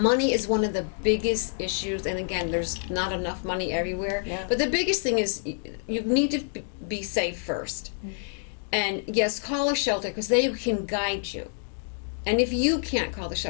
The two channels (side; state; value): right; silent; digital silence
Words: is one of the biggest issues, and again, there's not enough money everywhere. Yeah. But the biggest thing is you need to be safe first. And yes, call a shelter because they can guide you. And if you can't call the